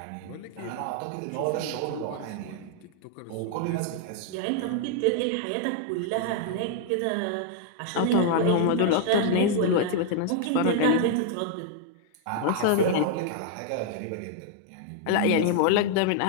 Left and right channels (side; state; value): both; different; correlation -0.01